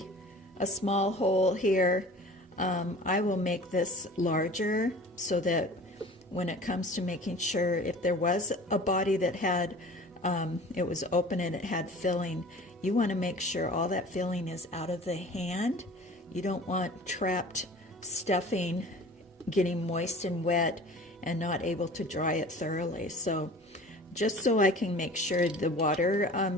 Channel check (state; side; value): normal; both; correlation 0.43